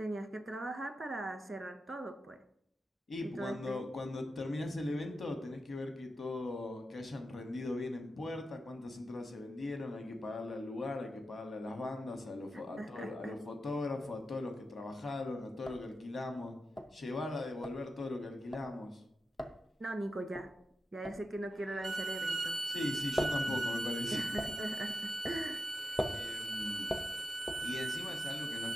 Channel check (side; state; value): both; normal; correlation 0.89